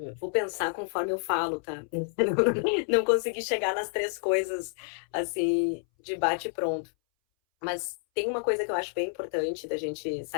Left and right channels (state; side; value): silent; right; 58 dB below the other